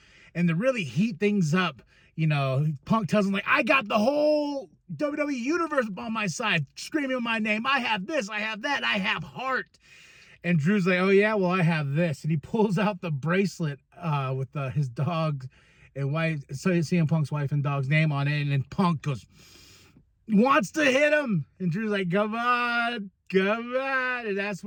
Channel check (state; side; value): identical; both; correlation 1.00